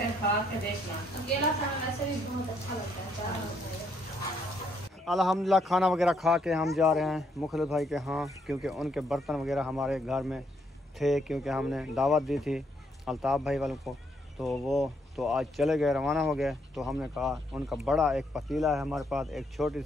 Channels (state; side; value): normal; both; correlation 0.73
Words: खा के देखना। अकेला खाना वैसे भी बहुत अच्छा लगता है, चार होता है। अल्हम्दुलिल्लाह खाना वगैरह खा के हम जा रहे हैं मुखलिस भाई के यहाँ, क्योंकि उनके बर्तन वगैरह हमारे घर में थे, क्योंकि हमने दावत दी थी अल्ताफ़ भाई वालों को, तो वो तो आज चले गए, रवाना हो गए। तो हमने कहा उनका बड़ा एक पतीला है हमारे पास, एक छोटी